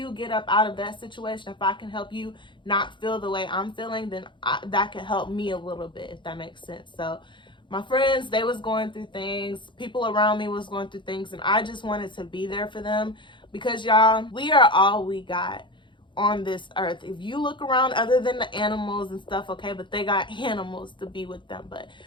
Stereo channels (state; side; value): late; right; 0.23 ms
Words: get up out of that situation, if I can help you not feel the way I'm feeling, then that can help me a little bit, if that makes sense. So my friends, they was going through things. People around me was going through things. And I just wanted to be there for them. Because y'all, we are all we got on this earth. If you look around, other than the animals and stuff, okay, but they got animals to be with them. But